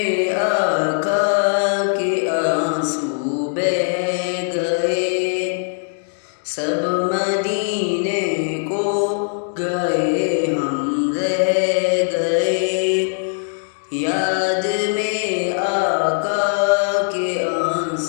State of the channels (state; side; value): silent; right; digital silence